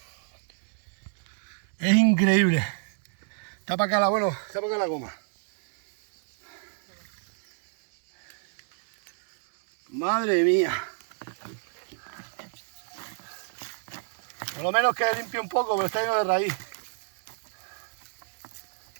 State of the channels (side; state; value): left; silent; digital silence